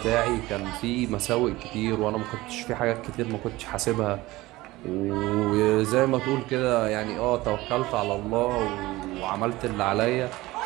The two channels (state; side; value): quieter; left; 19.0 dB